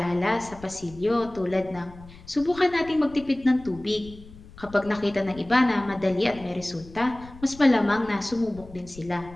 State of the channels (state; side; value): noise; left; rumble, 19 dB below the sound